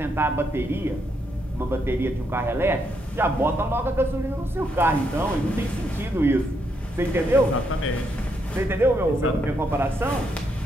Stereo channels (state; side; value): normal; both; correlation 0.77